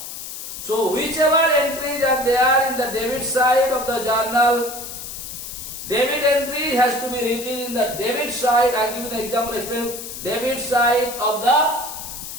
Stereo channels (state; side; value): noise; left; hiss, 9 dB below the sound